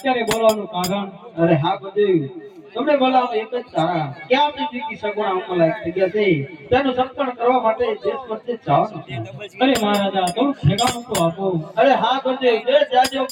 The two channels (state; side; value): identical; both; correlation 1.00